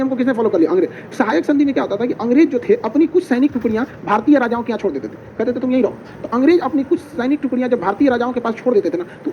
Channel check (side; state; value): both; identical; correlation 1.00